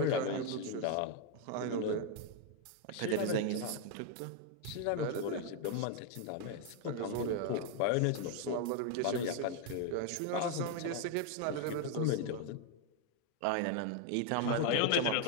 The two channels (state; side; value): different; both; correlation 0.01